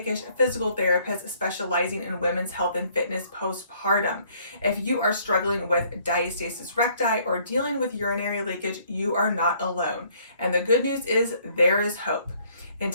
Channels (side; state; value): both; inverted; correlation -0.62